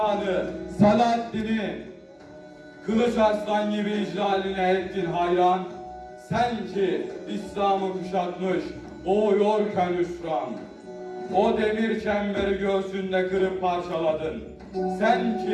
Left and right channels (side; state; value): both; identical; correlation 1.00